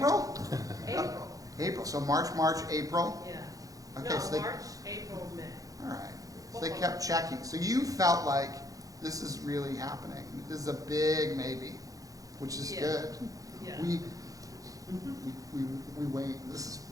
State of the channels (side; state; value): left; late; 0.17 ms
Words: April. April, so March, April? Yeah. Okay, No, so they, March, April, May. all right. So they kept checking. So you felt like this is really happening. This is a big maybe, which is Yeah. good. Yeah. We wait, this is